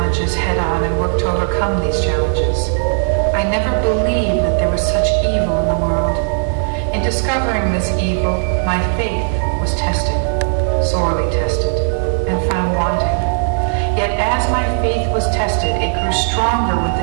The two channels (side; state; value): left; silent; 68 dB below the other